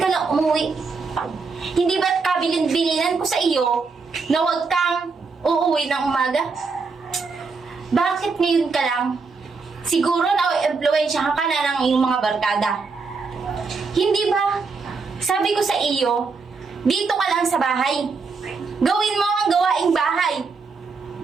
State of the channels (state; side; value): quieter; left; 4.6 dB